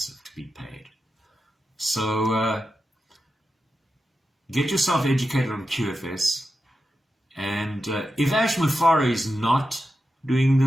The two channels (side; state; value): both; normal; correlation 0.90